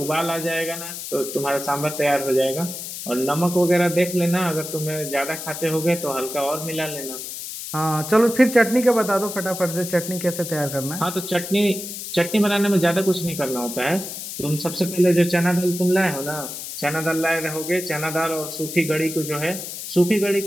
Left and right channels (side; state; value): left; noise; hiss, 8 dB below the sound